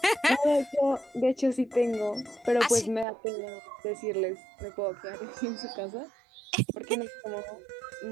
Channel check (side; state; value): left; drops out; at 3.1 s